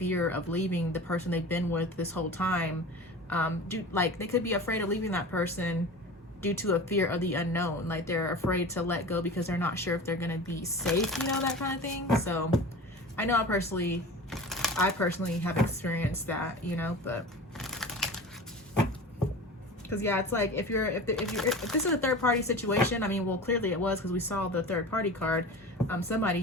of leaving the person they've been with this whole time. Like they could be afraid of leaving that person due to a fear of the unknown. Like they're afraid to let go because they're not sure if they're gonna be safe, you know, that kind of thing. So I know I personally have experienced that, you know, but because yeah, it's like if this is a third party situation, I mean, well, clearly it was because we saw the third party card. Somebody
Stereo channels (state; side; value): normal; both; correlation 0.35